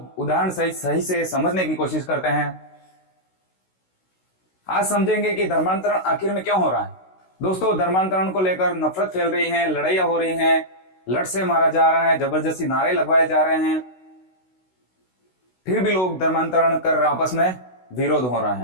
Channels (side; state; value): right; late; 16 ms